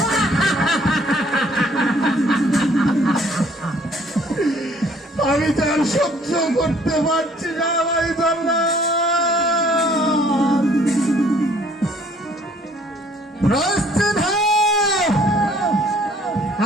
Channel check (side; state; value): both; normal; correlation 0.59